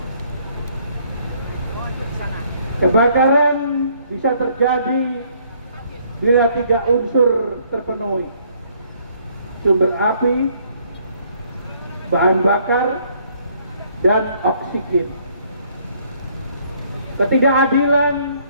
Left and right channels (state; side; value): inverted; both; correlation -0.64